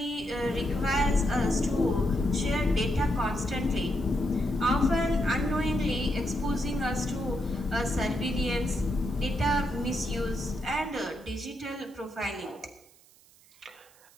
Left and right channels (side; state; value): right; noise; hiss, 27 dB below the sound